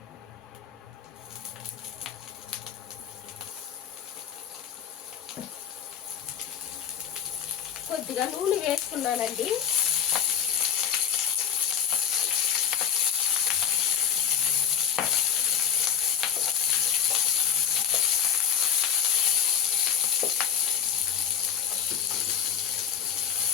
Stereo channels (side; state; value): right; quieter; 8.3 dB